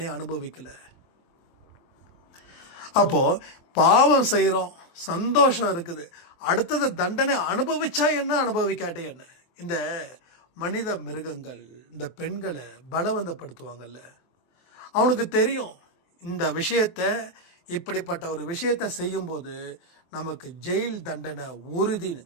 அனுபவிக்கல. அப்போ பாவம் செய்யறோம், சந்தோஷம் இருக்குது. அடுத்தது தண்டனை அனுபவிச்சா என்ன, அனுபவிக்காட்டே என்ன. இந்த மனித மிருகங்கள் இந்த பெண்களை பலவந்தப்படுத்துவாங்கல்ல, அவனுக்கு தெரியும் இந்த விஷயத்தை, இப்படிப்பட்ட ஒரு விஷயத்தை செய்யும்போது நமக்கு ஜெயில் தண்டனை உறுதின்னு.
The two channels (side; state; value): right; late; 23 ms